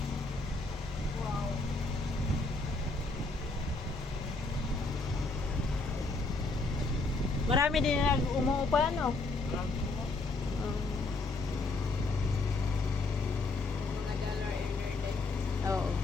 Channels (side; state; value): right; quieter; 3.4 dB